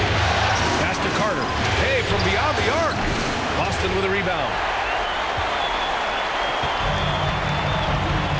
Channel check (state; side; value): identical; both; correlation 1.00